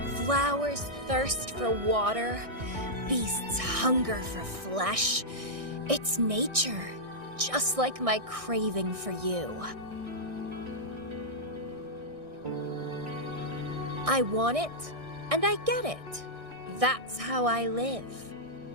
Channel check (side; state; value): left; late; 1.6 ms